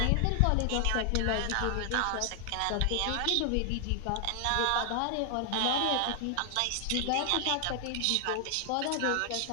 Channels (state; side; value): different; both; correlation 0.00